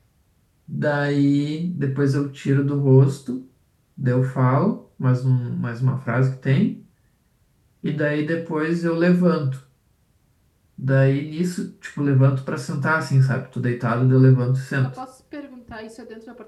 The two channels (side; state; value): both; identical; correlation 1.00